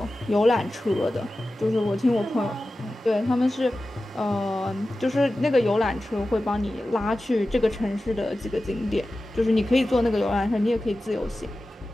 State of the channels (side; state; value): both; normal; correlation 0.94